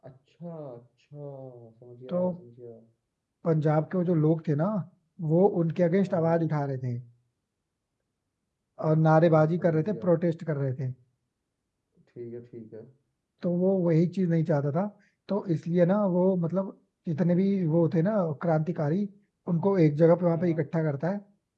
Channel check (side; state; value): both; identical; correlation 1.00